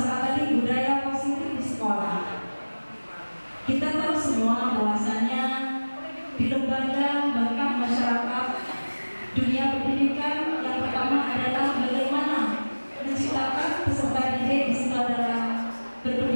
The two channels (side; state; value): both; inverted; correlation -1.00